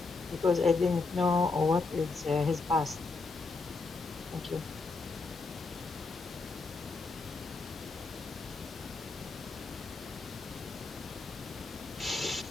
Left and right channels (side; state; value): right; quieter; 4.0 dB